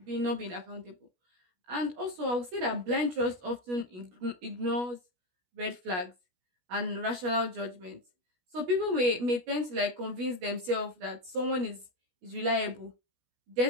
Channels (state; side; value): late; left; 16 ms